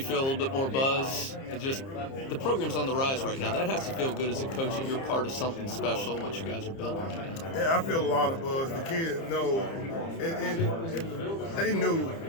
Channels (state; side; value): late; right; 30 ms